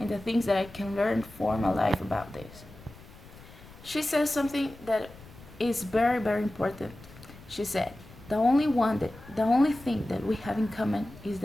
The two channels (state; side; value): noise; left; rumble, 20 dB below the sound